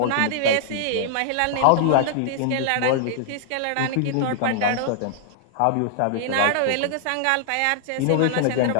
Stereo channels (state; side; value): different; both; correlation -0.01